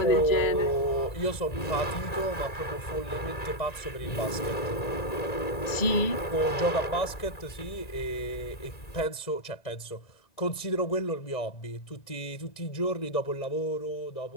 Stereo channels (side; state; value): right; late; 1.9 ms